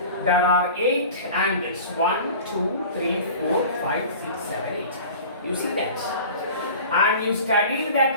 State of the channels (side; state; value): both; inverted; correlation -0.39